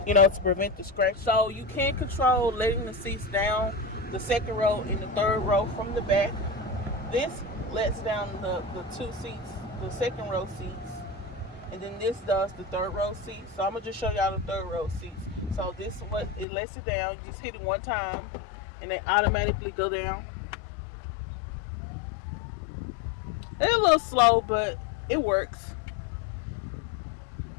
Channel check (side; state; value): right; drops out; at 16.4 s